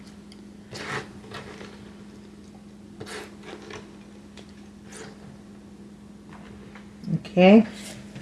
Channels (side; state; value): both; identical; correlation 1.00